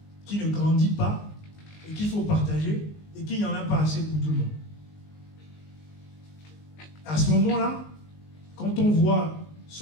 qui ne grandit pas et qu'il faut partager et qu'il n'y en a pas assez pour tout le monde. À ce moment-là, quand on voit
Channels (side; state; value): right; late; 19 ms